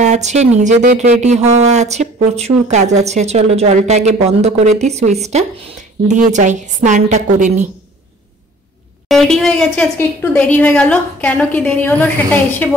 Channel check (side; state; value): both; normal; correlation 0.50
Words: আছে, নিজেদের রেডি হওয়া আছে, প্রচুর কাজ আছে। চলো জলটা আগে বন্ধ করে দিই, সুইচটা দিয়ে যাই, স্নানটা করে নিই। রেডি হয়ে গেছে, আজকে একটু দেরি হয়ে গেল। কেন কি দেরি হলো সেটা এসে